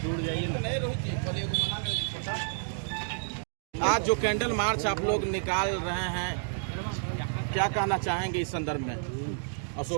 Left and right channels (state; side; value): silent; left; digital silence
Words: जाइए ना। आज जो कैंडल मार्च आप लोग निकाल रहे हैं, क्या कहना चाहेंगे इस संदर्भ में?